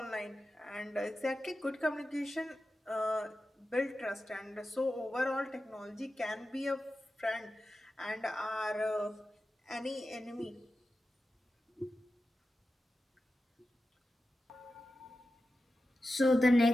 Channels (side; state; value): both; normal; correlation 0.92